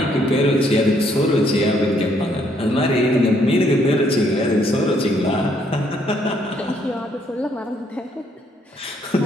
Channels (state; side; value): normal; both; correlation 0.69